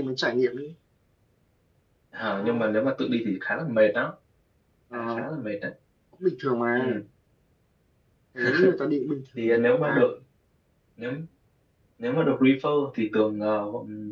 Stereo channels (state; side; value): identical; both; correlation 1.00